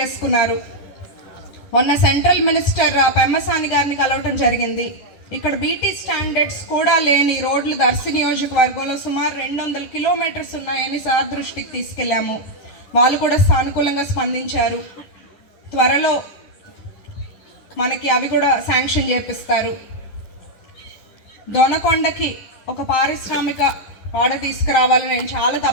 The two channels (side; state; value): right; late; 10 ms